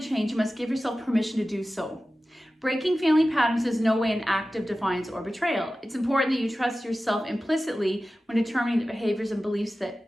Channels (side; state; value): both; normal; correlation 0.95